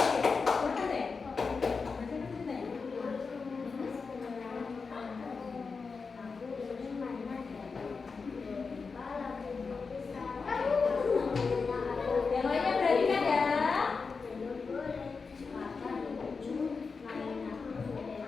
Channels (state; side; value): quieter; right; 4.8 dB